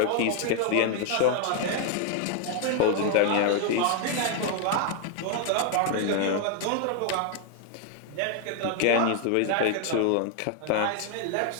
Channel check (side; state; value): both; different; correlation 0.00